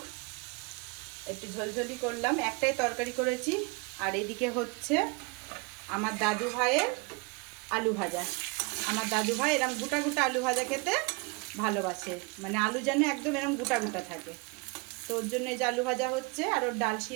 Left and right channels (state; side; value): quieter; left; 29.0 dB